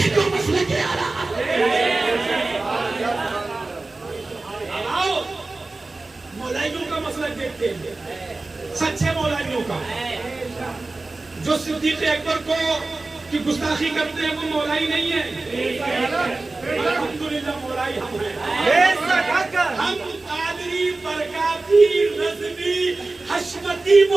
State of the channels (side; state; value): left; quieter; 3.3 dB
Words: को मसले के आला आओ मौलाइयों का मसला देखते हैं, सच्चे मौलाइयों का। जो सिद्दीक़ अकबर को की गुस्ताखी करते हैं वो मौलाई नहीं है। अल्हम्दुलिल्लाह मौलाई हम हैं। हम कादरी, बरकाती, रज़वी, हशमती